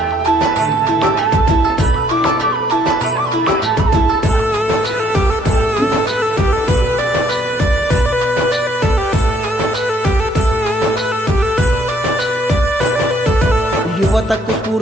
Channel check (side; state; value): both; normal; correlation 0.66